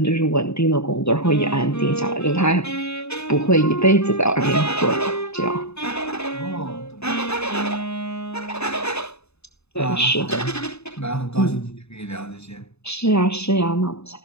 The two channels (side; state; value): right; late; 0.80 ms